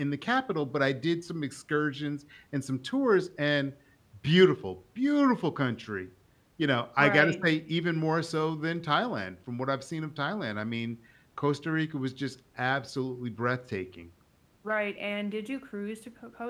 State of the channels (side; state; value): both; identical; correlation 1.00